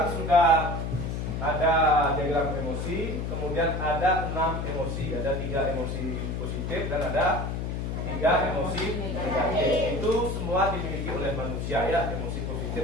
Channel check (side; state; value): left; noise; hum, 3 dB below the sound